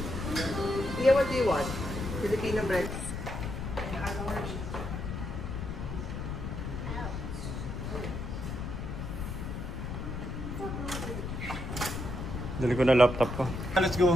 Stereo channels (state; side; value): noise; left; rumble, 5 dB below the sound